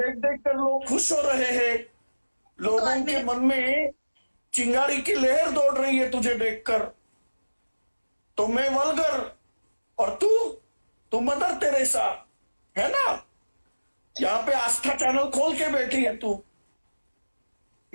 देख देख कर लोग खुश हो रहे हैं, लोगों के मन में चिंगारी की लहर दौड़ रही है तुझे देखकर। तो मैं वल्गर और तू मदर तेरेसा, है ना? यहाँ पे आस्था चैनल खोल के बैठी है तू,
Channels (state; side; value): inverted; both; correlation -1.00